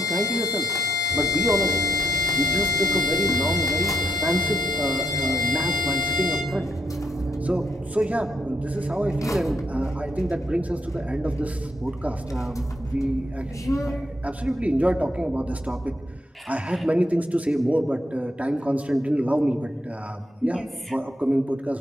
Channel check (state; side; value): normal; both; correlation 0.77